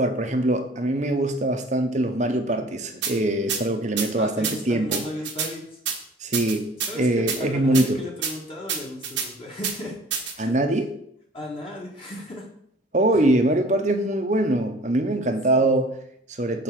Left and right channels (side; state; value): both; normal; correlation 0.48